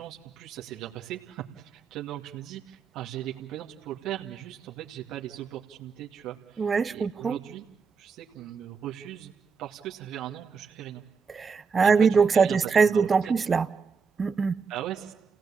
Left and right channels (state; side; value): quieter; left; 5.4 dB